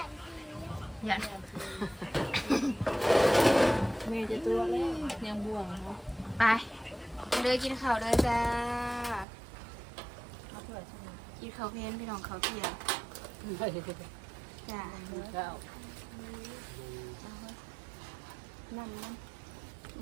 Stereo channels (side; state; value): left; drops out; at 9.2 s